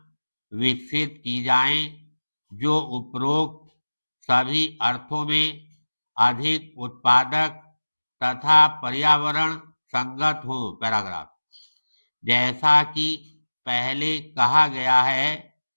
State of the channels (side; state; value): both; inverted; correlation -1.00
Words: विकसित की जाएं जो उपरोक्त सभी अर्थों में अधिक उत्पादक तथा पर्यावरण संगत हो। पैराग्राफ। जैसा कि पहले कहा गया है,